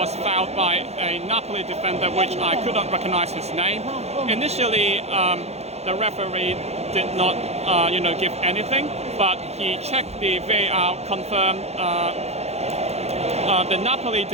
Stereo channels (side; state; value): left; late; 0.31 ms